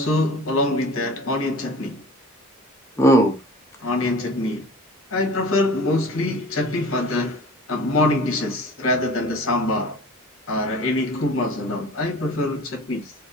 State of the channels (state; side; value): normal; both; correlation 0.42